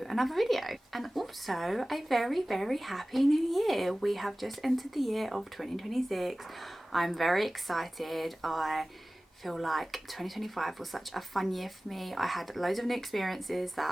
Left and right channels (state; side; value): normal; both; correlation 0.98